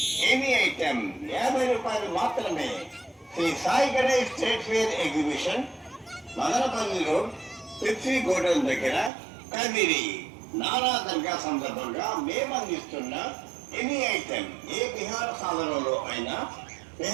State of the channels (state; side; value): drops out; left; at 9.1 s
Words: 50 రూపాయలు మాత్రమే. Shri Sai Ganesh state fair exhibition, Madanapalli road, Pepsi godown దగ్గర, కదిరి. నానా దర్గా సందర్భంగా మేము అందిస్తున్న ఎనీ ఐటమ్ ఏ విహార సాధనంలో అయినా